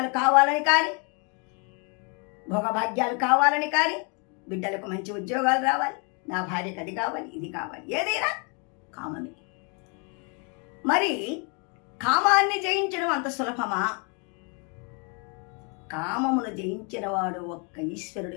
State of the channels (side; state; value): right; quieter; 35.5 dB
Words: కావాలని కానీ, భోగభాగ్యాలు కావాలని కానీ, బిడ్డలకు మంచి ఉద్యోగాలు రావాలి, నా భార్యకు అది కావాలి, ఇది కావాలి, ఏదైనా కామమే. మరి కామాన్ని జయించడం అంత సులభమా? కామమును జయించిన వాడు ఒక్క